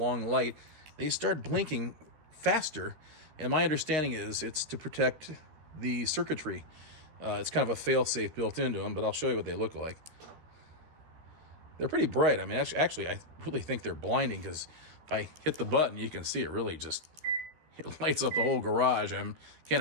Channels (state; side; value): late; left; 13 ms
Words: light, they start blinking faster. And my understanding is it's to protect the circuitry. It's kind of a fail-safe built into them, but I'll show you what they look like. They're pretty bright. I mean, actually, I really think they're blinding, because if I hit the button, you can see it really just it lights up the whole garage. I